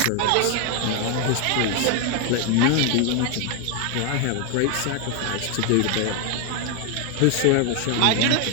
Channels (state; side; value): different; both; correlation 0.01